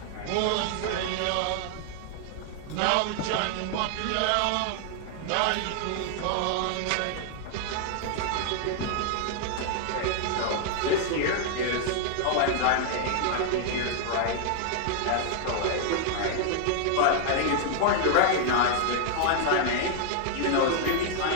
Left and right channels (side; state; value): both; different; correlation 0.00